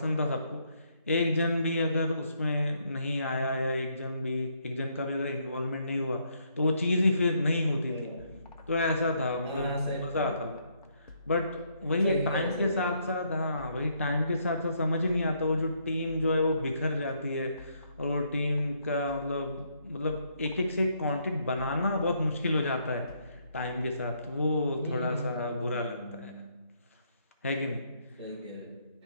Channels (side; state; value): both; inverted; correlation -0.72